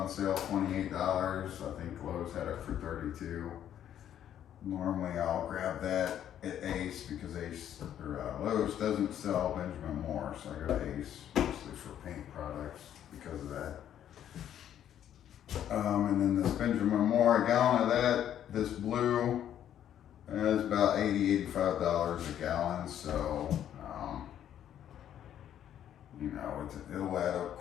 sale, $28. I think Lowe's had it for $32. Normally I'll grab that at Ace because Lowe's doesn't sell Benjamin Moore, so I go to Ace mostly for paint products because of that. And then this Benjamin Moore, a gallon of that, this blue, is about $85 a gallon. So it'll add up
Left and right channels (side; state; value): right; quieter; 10.4 dB